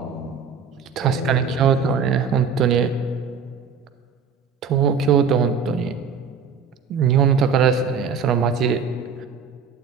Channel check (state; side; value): quieter; left; 6.0 dB